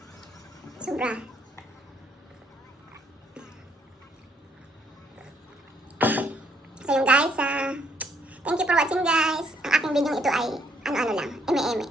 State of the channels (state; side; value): normal; both; correlation 0.69